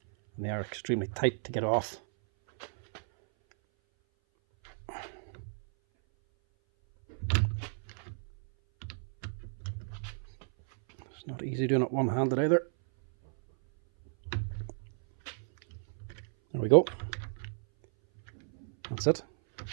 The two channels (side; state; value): left; silent; 56 dB below the other